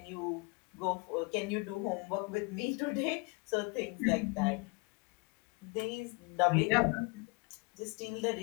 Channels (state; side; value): quieter; right; 28.6 dB